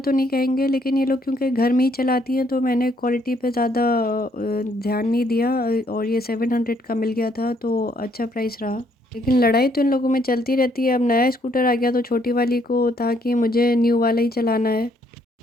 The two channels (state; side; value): normal; both; correlation 0.69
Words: तो नहीं कहेंगे लेकिन ये लोग क्योंकि घर में ही चलाती हैं तो मैंने क्वालिटी पे ज़्यादा ध्यान नहीं दिया, और ये 700 का मिल गया था तो अच्छा प्राइस रहा। लेकिन लड़ाई तो इन लोगों में चलती रहती है। अब नया स्कूटर आ गया तो छोटी वाली को था कि मुझे न्यू वाला ही चलाना है,